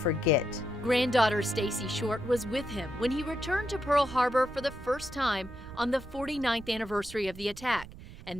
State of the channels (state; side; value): noise; right; rumble, 15 dB below the sound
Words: Granddaughter Stacy Short was with him when he returned to Pearl Harbor for the first time on the 49th anniversary of the attack,